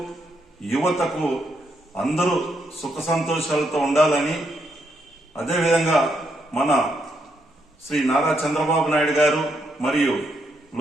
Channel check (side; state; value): both; normal; correlation 0.78